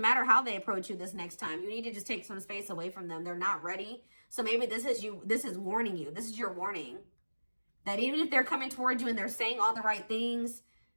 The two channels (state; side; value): inverted; both; correlation -1.00